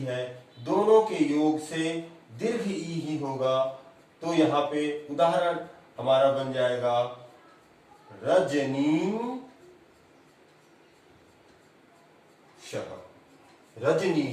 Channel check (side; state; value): both; identical; correlation 1.00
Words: है, दोनों के योग से दीर्घ ई ही होगा। तो यहां पे उदाहरण हमारा बन जाएगा रजनीशः।